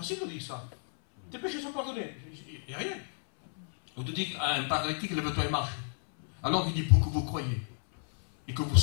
de dire ça. Tes péchés sont pardonnés. Il n'y a rien. Ou de dire à un paralytique, lève-toi et marche. Alors il dit, pour que vous croyez et que vous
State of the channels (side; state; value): right; silent; 57 dB below the other